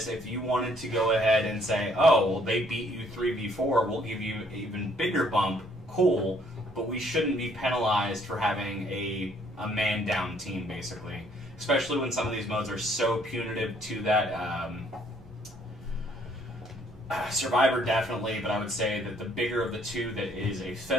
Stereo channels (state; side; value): normal; both; correlation 0.64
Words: if you wanted to go ahead and say, oh, well, they beat you 3v4, we'll give you an even bigger bump, cool, but we shouldn't be penalized for having a man-down team, basically. Especially when some of these modes are so punitive to that. Survivor definitely, but I would say that the bigger of the two that is a